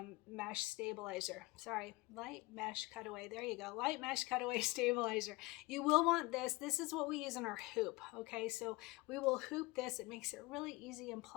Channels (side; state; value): right; quieter; 22.5 dB